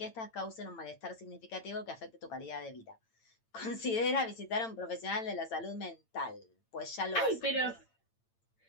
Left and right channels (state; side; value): late; right; 8.9 ms